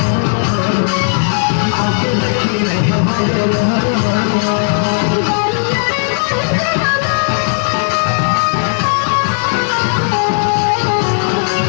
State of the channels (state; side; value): silent; right; digital silence